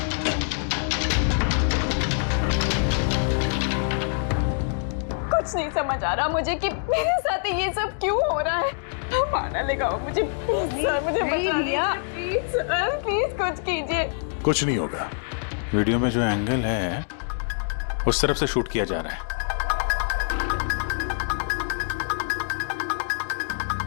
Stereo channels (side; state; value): right; silent; 62 dB below the other